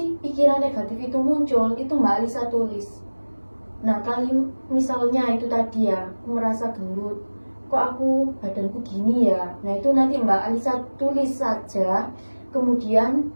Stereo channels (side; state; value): both; inverted; correlation -1.00